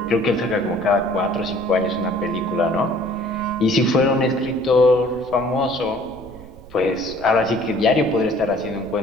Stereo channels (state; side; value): noise; right; rumble, 20 dB below the sound